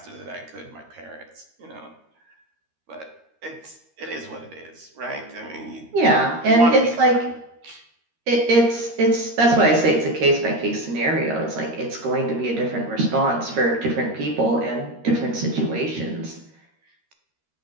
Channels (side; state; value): left; late; 13 ms